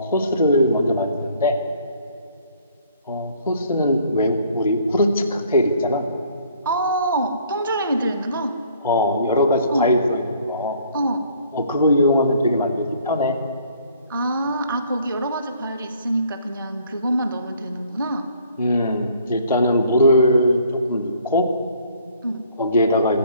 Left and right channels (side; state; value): both; inverted; correlation -0.59